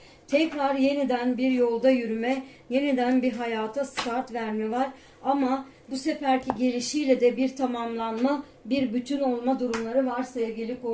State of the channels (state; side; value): identical; both; correlation 1.00